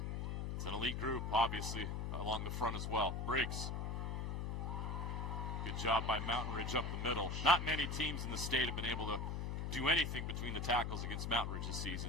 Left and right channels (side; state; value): left; noise; hum, 2 dB below the sound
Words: It's an elite group, obviously, along the front as well. Briggs. Good job by Mountain Ridge up the middle. Not many teams in the state have been able to do anything between the tackles against Mountain Ridge this